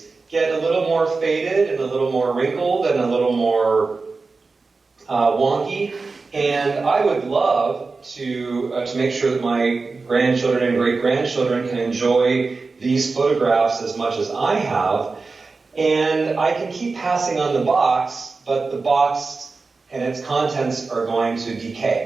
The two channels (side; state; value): left; quieter; 4.1 dB